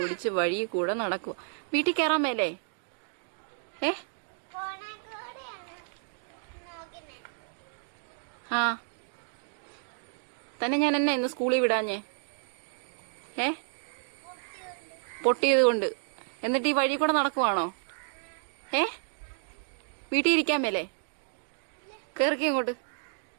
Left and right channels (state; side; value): silent; left; 57 dB below the other